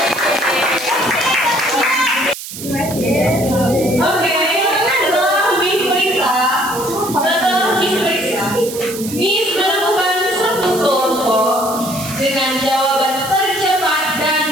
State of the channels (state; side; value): noise; right; hiss, 10 dB below the sound